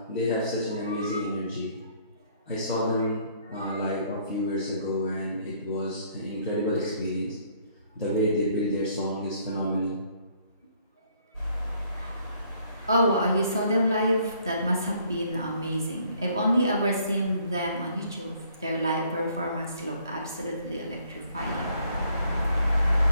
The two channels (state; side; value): inverted; both; correlation -0.64